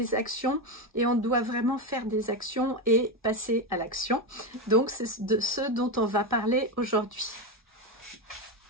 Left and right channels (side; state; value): both; normal; correlation 0.13